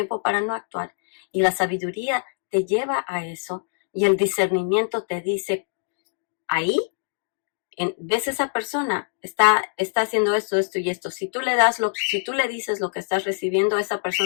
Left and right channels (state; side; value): silent; right; digital silence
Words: para no actuar. Y la sabiduría te lleva a eso y el discernimiento te dice, ahí, ves esa persona, está haciendo esto, esto y esto. Si tú le dices lo que estás recibiendo, esa